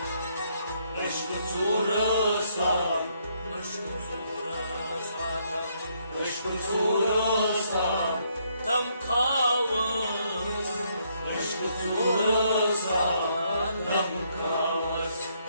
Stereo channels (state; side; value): inverted; both; correlation -0.72